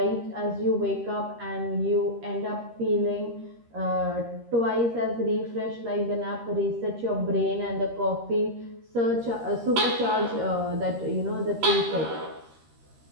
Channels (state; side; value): late; left; 13 ms